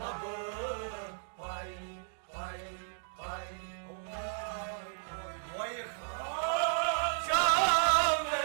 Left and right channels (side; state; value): left; silent; digital silence